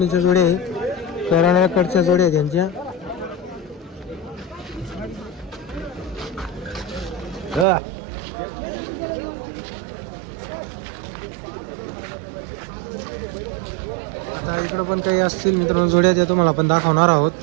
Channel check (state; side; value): drops out; left; at 7.7 s